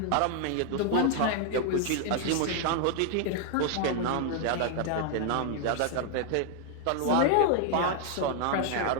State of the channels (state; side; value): different; both; correlation 0.00